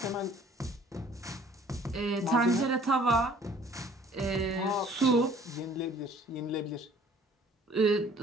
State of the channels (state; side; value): normal; both; correlation 0.55